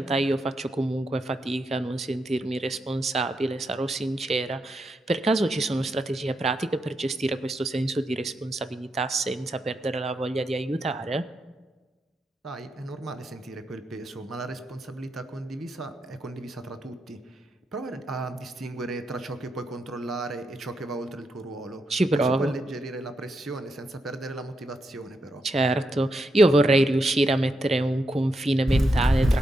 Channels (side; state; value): both; normal; correlation 0.83